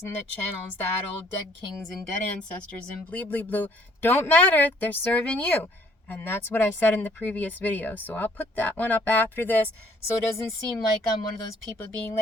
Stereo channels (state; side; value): normal; both; correlation 0.61